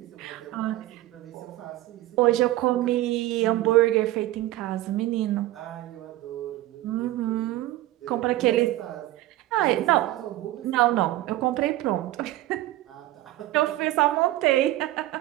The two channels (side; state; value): left; quieter; 16.0 dB